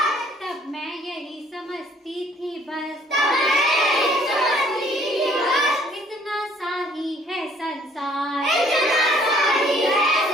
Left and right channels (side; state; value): both; normal; correlation 0.60